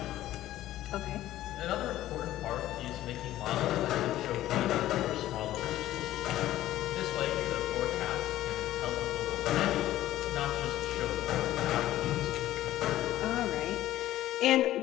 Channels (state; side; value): quieter; right; 14.2 dB